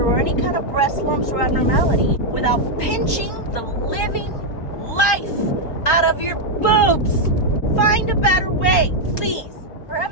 or any kind of breast lumps or abnormality without pinching the living life out of your boobs. Find a better way, please. For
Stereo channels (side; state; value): right; late; 4.3 ms